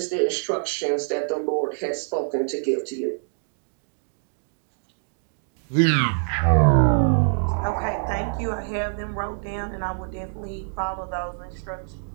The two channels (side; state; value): left; silent; digital silence